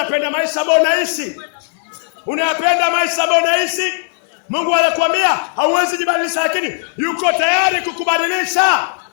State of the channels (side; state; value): right; silent; 57 dB below the other